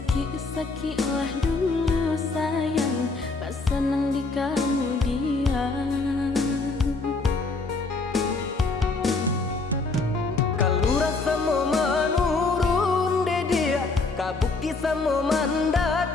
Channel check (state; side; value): quieter; right; 3.8 dB